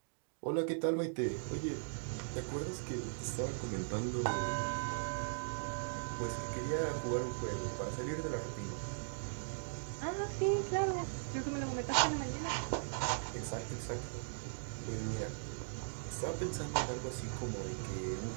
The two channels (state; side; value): silent; left; digital silence